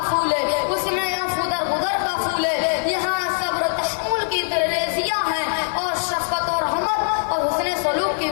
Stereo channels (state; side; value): silent; right; digital silence